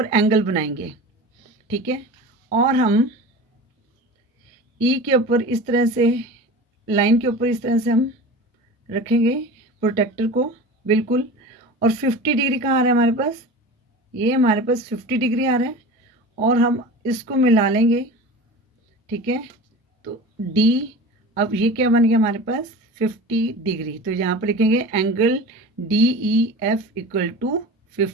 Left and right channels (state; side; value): normal; both; correlation 0.34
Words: एंगल बनाएंगे, ठीक है। और हम ई के ऊपर इस तरह से, लाइन के ऊपर इस तरह से हम रखेंगे प्रोटेक्टर को, बिल्कुल। और 50 डिग्री कहाँ आ रहा है हमारे पास, ये हमारे पास 50 डिग्री आ रहा है, और हम इसको मिला लेंगे, ठीक है। तो डी, अब ये क्या बन गया हमारे पास 50 डिग्री। तो यहाँ पर लिखेंगे angle D E F equal to